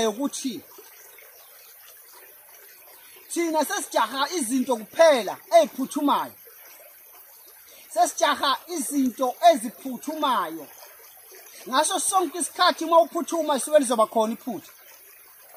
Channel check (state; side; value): identical; both; correlation 1.00